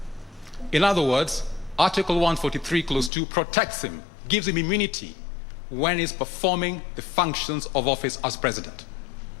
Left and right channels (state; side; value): drops out; right; at 3.1 s